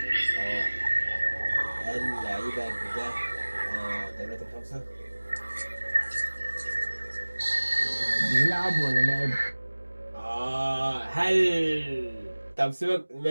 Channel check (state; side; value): inverted; both; correlation -1.00